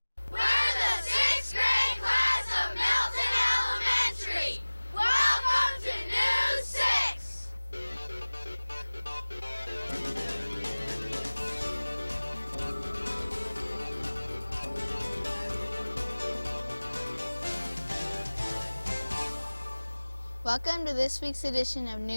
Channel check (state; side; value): inverted; both; correlation -1.00